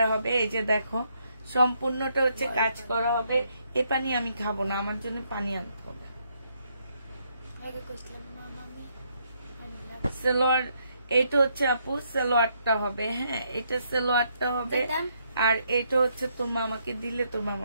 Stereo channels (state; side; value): inverted; both; correlation -0.74